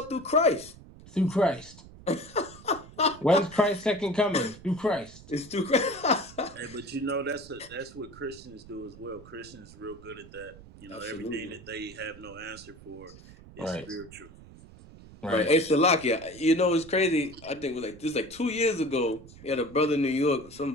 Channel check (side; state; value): right; noise; rumble, 19 dB below the sound